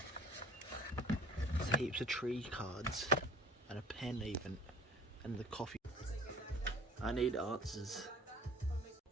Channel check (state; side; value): normal; both; correlation 0.48